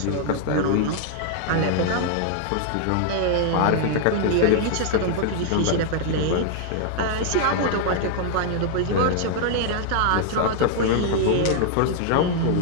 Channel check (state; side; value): different; both; correlation 0.00